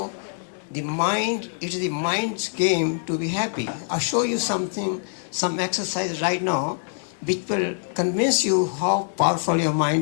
the mind, it is the mind's game to be happy. I'll show you something, some exercise right now, which will convince you how powerful your mind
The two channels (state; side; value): silent; right; digital silence